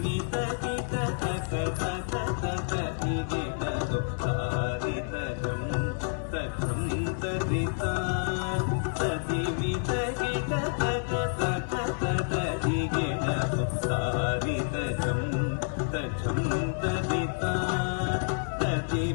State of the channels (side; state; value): right; silent; 59 dB below the other